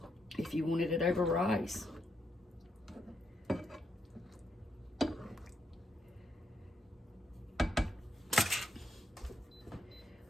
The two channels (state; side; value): normal; both; correlation 0.79